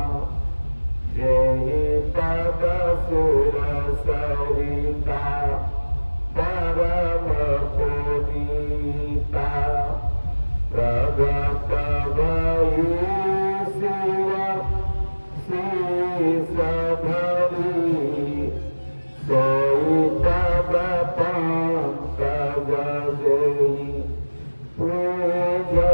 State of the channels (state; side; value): inverted; both; correlation -1.00